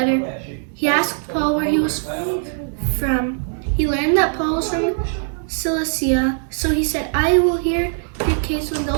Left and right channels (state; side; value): silent; left; digital silence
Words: He asked Paul where he was from. He learned that Paul was from Cilicia, so he said, I will hear your case when